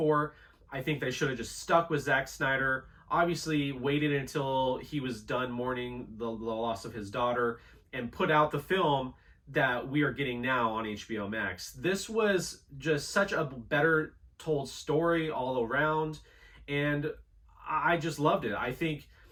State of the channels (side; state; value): both; identical; correlation 1.00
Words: I think they should have just stuck with Zack Snyder, obviously waited until he was done mourning the loss of his daughter, and put out the film that we are getting now on HBO Max. This was just such a better told story all around, and I just loved it. I think